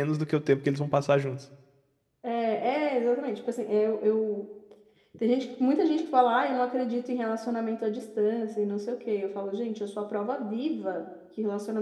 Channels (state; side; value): identical; both; correlation 1.00